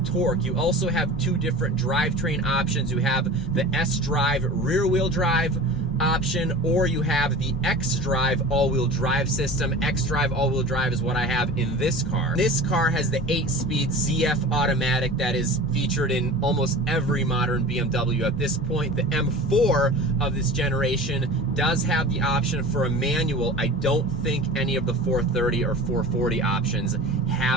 torque. You also have 2 different drivetrain options. You have the S-Drive rear-wheel drive option, or you have the X-Drive all-wheel drive system. X-Drive all-wheel drive is what I have in this car. This car has the 8-speed ZF automatic that is featured in almost every modern BMW at this point. The M4 of this generation does have the option for a manual. I don't think any of the 430 or 440 options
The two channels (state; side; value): normal; both; correlation 0.36